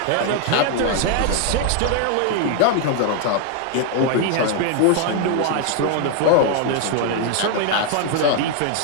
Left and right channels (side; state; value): both; different; correlation 0.00